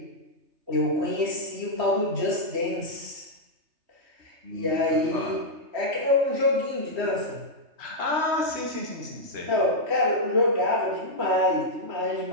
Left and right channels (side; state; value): left; late; 3.3 ms